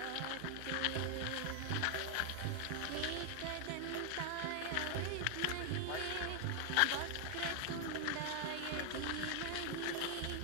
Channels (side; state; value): both; different; correlation 0.00